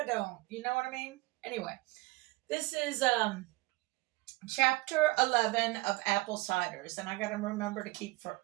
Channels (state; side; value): quieter; left; 21.9 dB